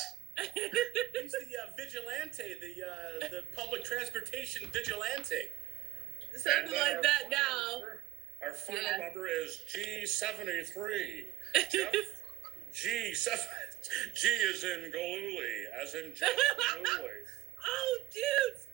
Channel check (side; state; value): left; quieter; 14.8 dB